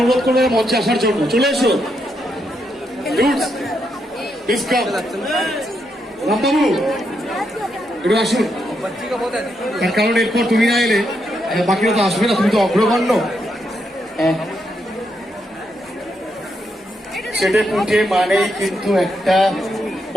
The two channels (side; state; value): both; normal; correlation 0.80